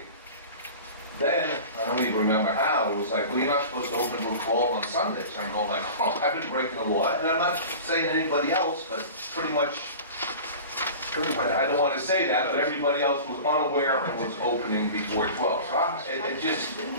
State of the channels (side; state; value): both; inverted; correlation -0.37